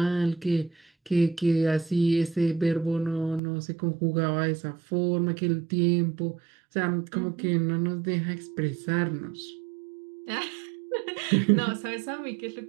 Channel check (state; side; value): drops out; left; at 3.4 s